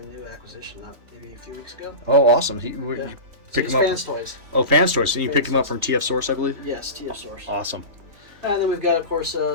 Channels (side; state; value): left; late; 3.4 ms